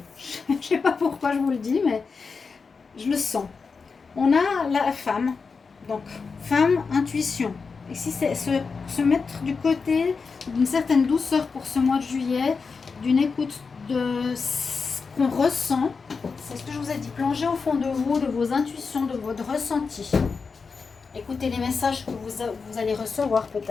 Je ne sais pas pourquoi je vous le dis, mais je le sens. On a la femme. Donc, femme, intuition. Et si c'est se mettre du côté d'une certaine douceur pour ce mois de juillet, d'une écoute de qu'on ressent, c'est ce que je vous ai dit, plongez au fond de vous, de vos intuitions, de votre ressenti. Écoutez les messages que vous allez recevoir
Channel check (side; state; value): right; quieter; 5.0 dB